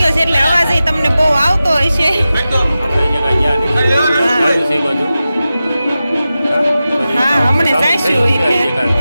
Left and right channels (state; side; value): inverted; both; correlation -0.94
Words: ગયો છે એટલે અવાજ તમને બહુ આવતો હોય છે. હા, હમણે જઈશું